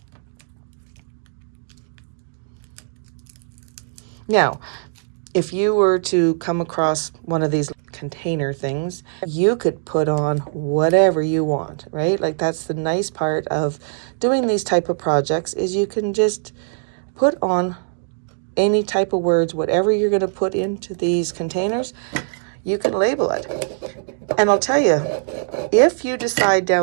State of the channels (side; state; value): left; silent; digital silence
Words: Now, if you were to come across one of these container things, you could put on whatever you want, right? Like that's the nice part of doing these type of projects is you can just put on any type of words, whatever you're going to put into these containers, you can label it. And I'll tell you, if you decide